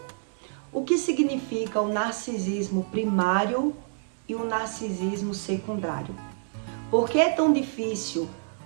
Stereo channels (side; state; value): left; silent; 60 dB below the other